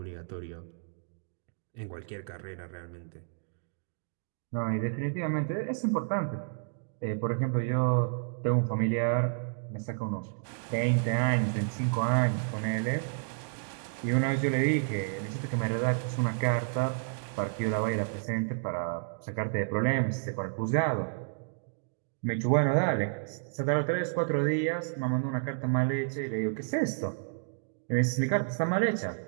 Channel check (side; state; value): left; silent; digital silence